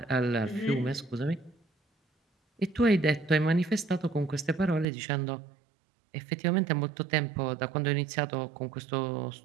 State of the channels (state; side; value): drops out; left; at 4.9 s